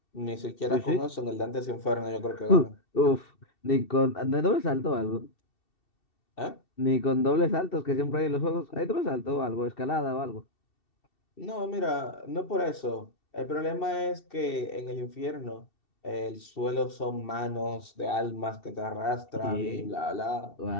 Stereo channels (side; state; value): right; late; 2.7 ms